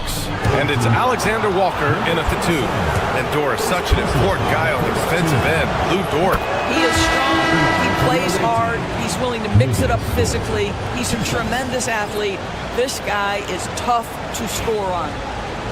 And it's Alexander Walker in at the 2. And Dort is such an important guy on the defensive end. Lou Dort. He is strong. He plays hard. He's willing to mix it up physically. He's a tremendous athlete. This guy is tough to score on.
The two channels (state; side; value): identical; both; correlation 1.00